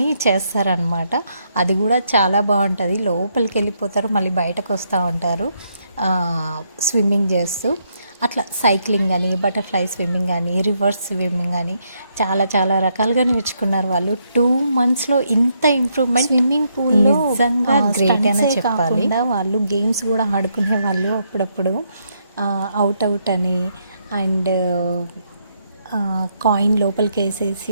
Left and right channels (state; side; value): inverted; both; correlation -0.76